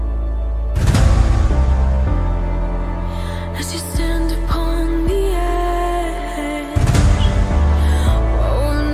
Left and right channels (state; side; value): identical; both; correlation 1.00